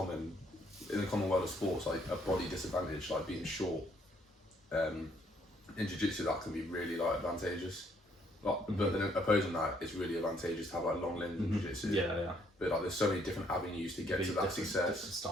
the common world of sports, like a body disadvantage, like being short, in jiu-jitsu that can be really like advantageous. Like, but then opposing that, it's really advantageous to have like long limbs in jiu-jitsu. Yeah. But like there's so many different avenues to get to that success. Different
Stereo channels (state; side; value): normal; both; correlation 0.68